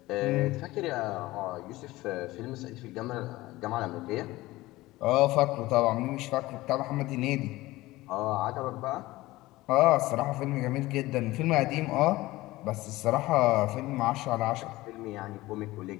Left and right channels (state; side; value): quieter; right; 18.6 dB